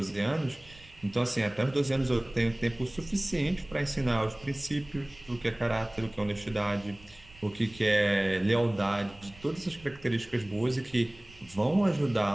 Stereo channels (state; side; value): noise; right; rumble, 23 dB below the sound